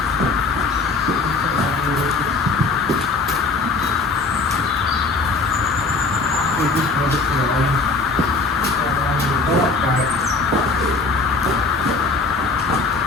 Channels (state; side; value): quieter; right; 4.0 dB